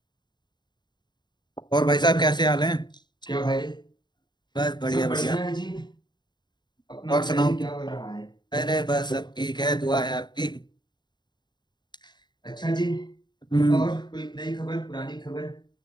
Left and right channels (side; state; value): right; late; 0.21 ms